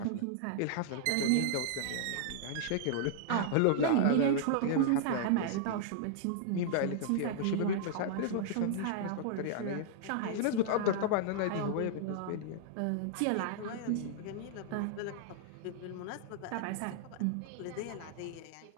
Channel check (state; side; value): different; both; correlation -0.01